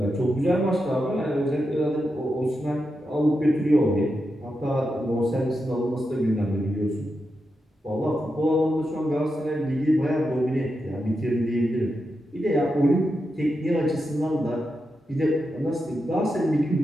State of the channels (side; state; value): both; normal; correlation 0.87